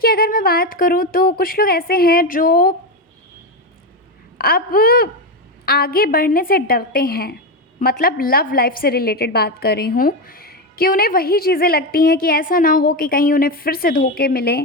अगर मैं बात करूँ तो कुछ लोग ऐसे हैं जो अब आगे बढ़ने से डरते हैं। मतलब लव लाइफ से रिलेटेड बात कर रही हूँ कि उन्हें वही चीज़ें लगती हैं कि ऐसा ना हो कि कहीं उन्हें फिर से धोखे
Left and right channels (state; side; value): normal; both; correlation 0.12